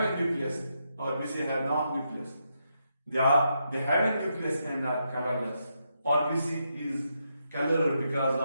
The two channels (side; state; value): both; inverted; correlation -0.81